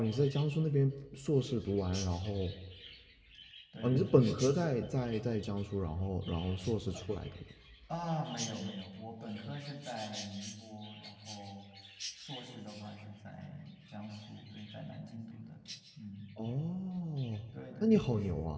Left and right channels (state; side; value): identical; both; correlation 1.00